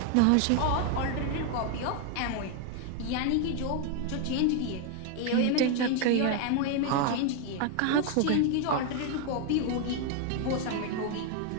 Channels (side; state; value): both; different; correlation 0.01